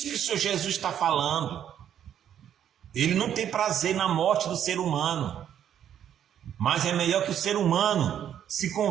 que o Senhor Jesus está falando. Ele não tem prazer na morte do ser humano. Mas é melhor que o ser humano se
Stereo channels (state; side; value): quieter; left; 9.8 dB